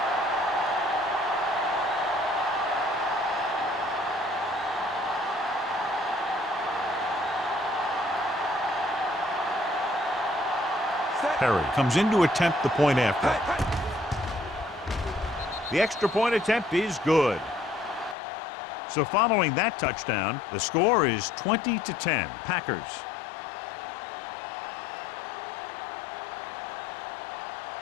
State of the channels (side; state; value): right; drops out; at 18.2 s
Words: Perry comes in to attempt the point after. The extra point attempt is good. So following that touchdown, the score is 20-10, Packers.